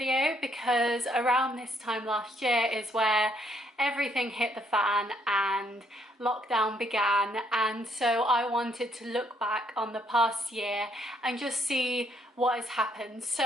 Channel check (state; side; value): normal; both; correlation 0.70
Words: because around this time last year is where everything hit the fan and lockdown began, and so I wanted to look back on the past year and just see what has happened.